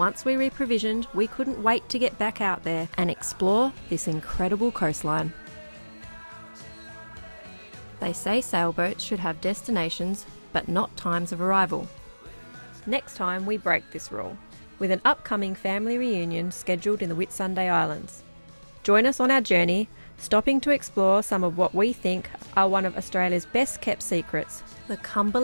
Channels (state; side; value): inverted; both; correlation -1.00